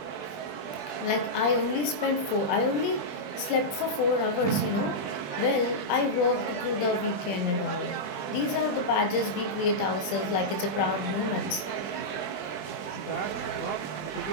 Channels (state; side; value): late; right; 20 ms